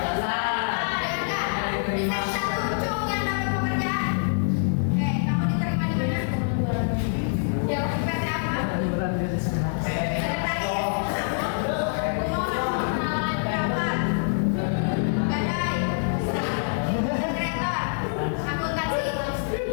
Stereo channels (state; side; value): silent; right; 59 dB below the other